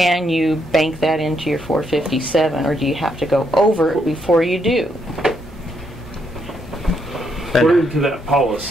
you bank that into your 457, or do you have to go over it before you do? According to that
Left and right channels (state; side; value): normal; both; correlation 0.76